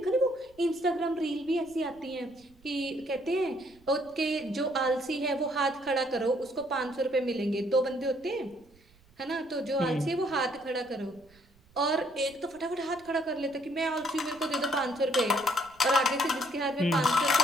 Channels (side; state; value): right; noise; rumble, 29 dB below the sound